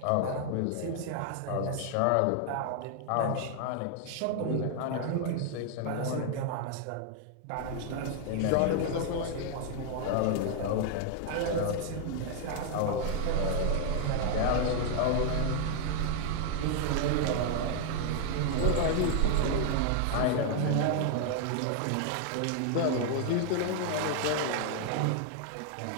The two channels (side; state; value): both; different; correlation 0.00